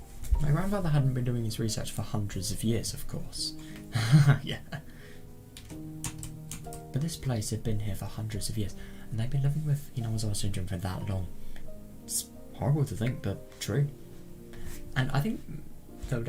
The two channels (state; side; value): identical; both; correlation 1.00